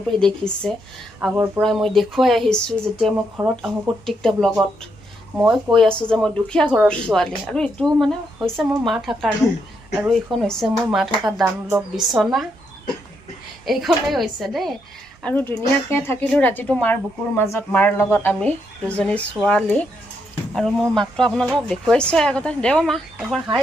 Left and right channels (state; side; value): normal; both; correlation 0.78